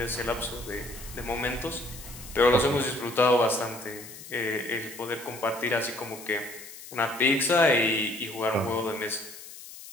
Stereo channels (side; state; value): left; noise; hiss, 15 dB below the sound